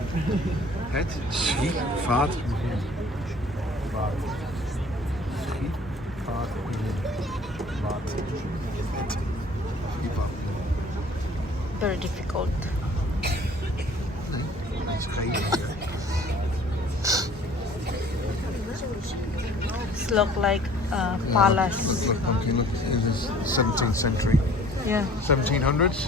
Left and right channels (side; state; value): both; normal; correlation 0.52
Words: Het schiet vaart. Very difficult. Nee, is geen. It's look like a palace. Look, pumpkin, look, it is 17th century. Yeah. 1700s.